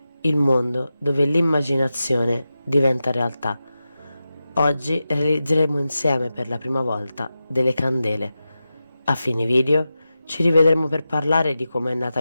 il mondo dove l'immaginazione diventa realtà. Oggi realizzeremo insieme per la prima volta delle candele. A fine video ci rivedremo per parlare di come è nata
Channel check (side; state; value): both; inverted; correlation -0.92